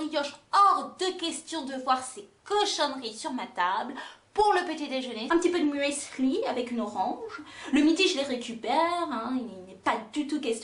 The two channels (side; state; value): both; identical; correlation 1.00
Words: hors de question de voir ces cochonneries sur ma table. Pour le petit déjeuner, un petit peu de muesli avec une orange. Le midi, je les récupère, hein, il n'est pas du tout